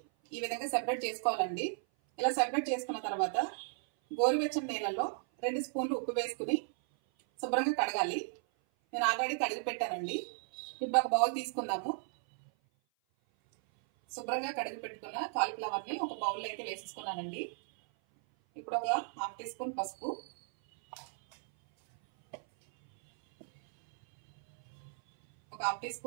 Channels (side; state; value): left; silent; 55 dB below the other